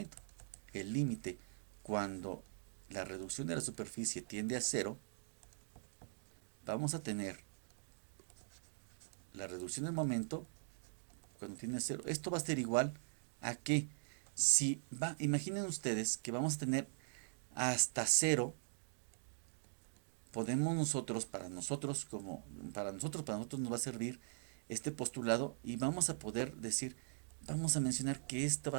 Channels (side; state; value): left; silent; digital silence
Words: El límite, cuando la reducción de la superficie tiende a cero, vamos a tener la reducción del momento cuando tiende a cero. Esto va a ser igual a que imaginen ustedes que vamos a tener hasta cero, podemos nosotros, para nosotros nos va a servir este postulado y vamos a poder decir, vamos a mencionar que esto